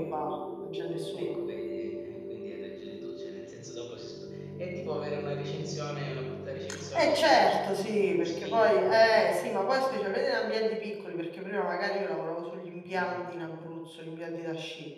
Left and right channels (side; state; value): both; identical; correlation 1.00